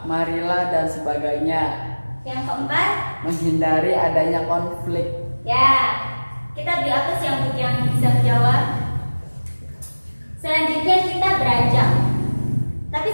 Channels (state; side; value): inverted; both; correlation -1.00